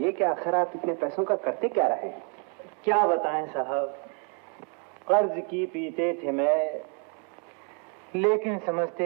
कि आखिर आप इतने पैसों का करते क्या रहे? क्या बताएं साहब, कर्ज की पीते थे मैं, लेकिन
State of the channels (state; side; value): quieter; left; 37.2 dB